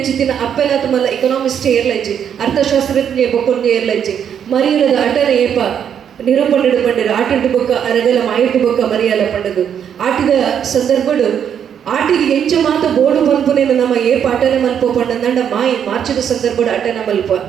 ಅಪ್ಪೆಲಾತ ಮಲ್ಲ ಎಕನಾಮಿಸ್ಟ್ ಏರ್ಲಜ್ಜಿ ಅರ್ಥಶಾಸ್ತ್ರಜ್ಞ ಬೊಕ್ಕೊಂದು ಏರ್ಲಜ್ಜಿ ಮರಿಯಲದ ಅಟನ ಏಪ ನಿರೂಪಣೆಡು ಪಂಡರು ಆಟಿಡು ಬೊಕ್ಕ ಅರಗಲ ಮಾಯಿಟ್ಟು ಬೊಕ್ಕ ಮರಿಯಲ ಪಂಡದು ಆಟಿದ ಸಂದರ್ಭಡು ಆಟಿಗೆ ಎಂಚ ಮಾತ ಬೋಡು ಪನ್ಪುನೇನ ನಮ್ಮ ಏಪ ಅಟನ ಮಲ್ಪ ಪಂಡಂದಂಡ ಮಾಯಿ ಮಾರ್ಚದ ಸಂದರ್ಭಡು ಅಟನ ಮಲ್ಪ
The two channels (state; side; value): quieter; left; 8.5 dB